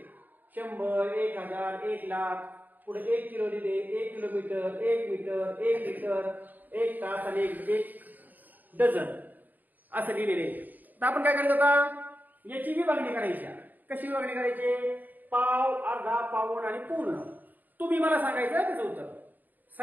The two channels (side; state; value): left; late; 0.085 ms